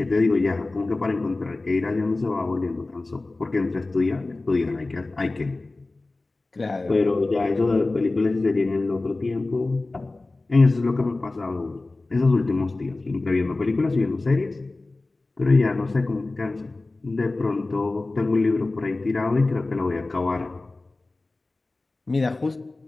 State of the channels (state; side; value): quieter; right; 3.2 dB